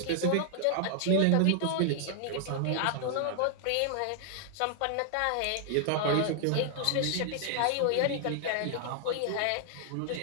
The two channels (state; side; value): different; both; correlation 0.00